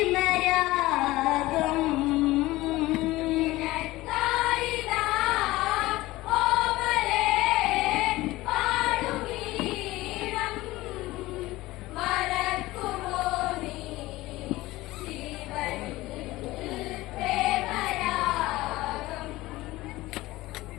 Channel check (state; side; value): quieter; right; 18.6 dB